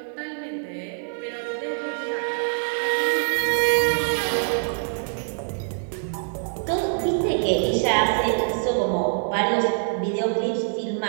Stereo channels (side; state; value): left; silent; 62 dB below the other